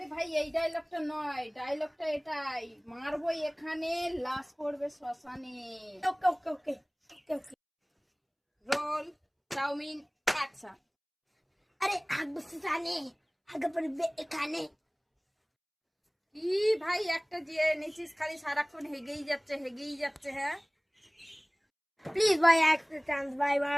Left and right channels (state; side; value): identical; both; correlation 1.00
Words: ভাই এই ডায়লগটা নয়, ডায়লগটা এটাই, মারবো এখানে লাশ পড়বে শ্মশানে। Okay okay okay okay okay. Roll, chowmein, action. আরে হাগবো শ্মশানে, হাগা পড়বে এখানে। কি ভাই একটা যে নিচিস খালি সারাক্ষণ হেগেই যাচ্ছে হ্যাঁ। প্লিজ ভাই একটা চান্স ভাই